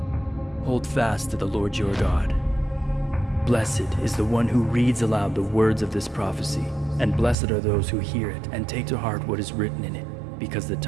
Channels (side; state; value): left; drops out; at 7.4 s